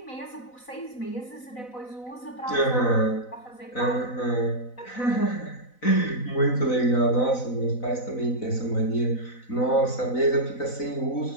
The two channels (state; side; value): late; right; 4.0 ms